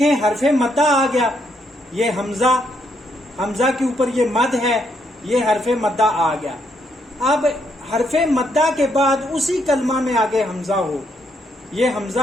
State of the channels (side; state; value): both; normal; correlation 0.75